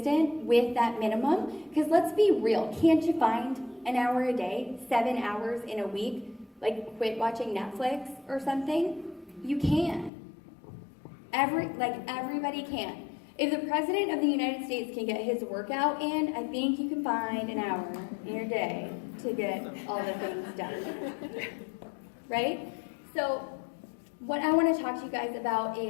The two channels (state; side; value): drops out; right; at 10.1 s